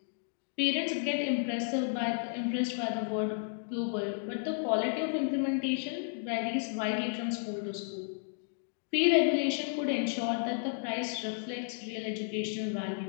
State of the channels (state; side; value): silent; right; digital silence